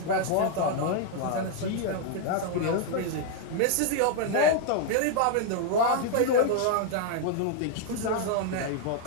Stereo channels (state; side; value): different; both; correlation 0.00